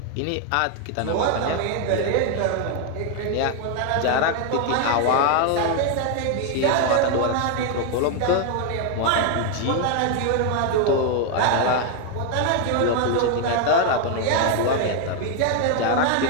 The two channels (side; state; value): both; different; correlation 0.01